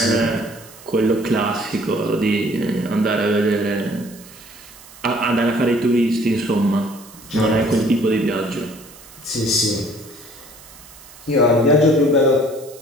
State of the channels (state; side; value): noise; right; hiss, 21 dB below the sound